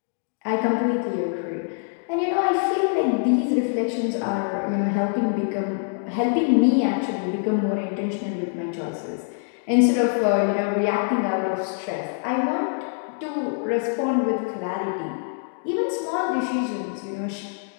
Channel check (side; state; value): right; silent; 62 dB below the other